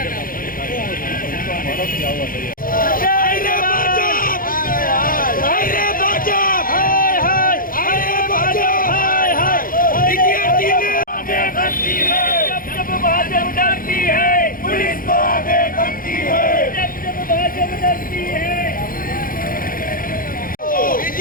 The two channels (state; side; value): late; right; 0.41 ms